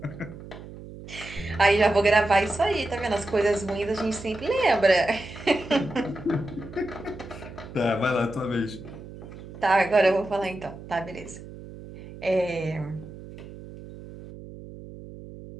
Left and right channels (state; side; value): noise; right; hum, 15 dB below the sound